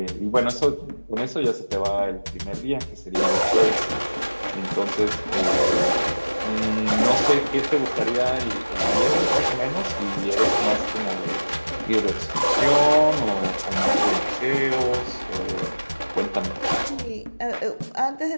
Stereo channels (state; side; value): inverted; both; correlation -1.00